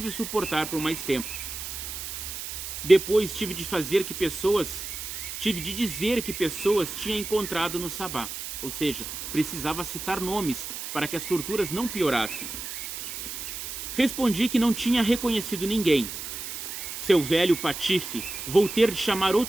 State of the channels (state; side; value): noise; right; hiss, 7 dB below the sound